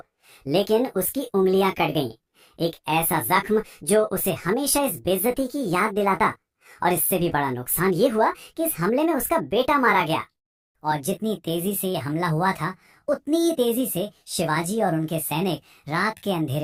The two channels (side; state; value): both; identical; correlation 1.00